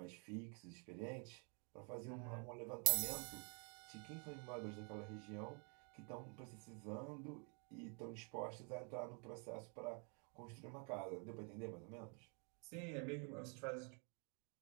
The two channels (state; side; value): quieter; left; 37.7 dB